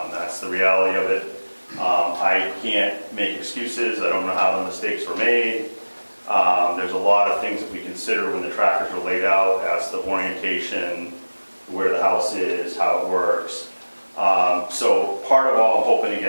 the reality of it. I can't make excuses. I don't know how the mistakes were made. There's a lot of things that we consider when the trackers are laid out as the orientation, where the house is, how it works. So part of all I'm hoping to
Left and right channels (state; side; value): inverted; both; correlation -1.00